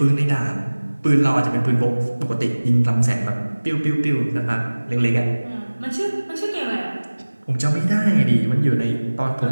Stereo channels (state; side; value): inverted; both; correlation -1.00